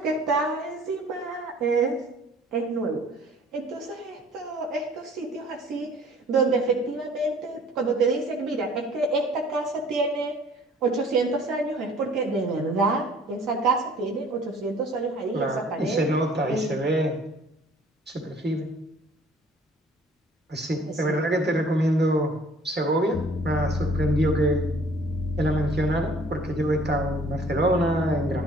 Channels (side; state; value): both; normal; correlation 0.53